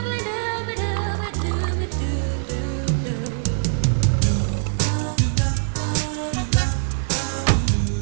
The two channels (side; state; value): left; silent; 64 dB below the other